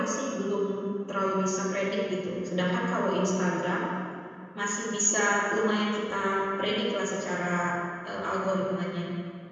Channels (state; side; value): identical; both; correlation 1.00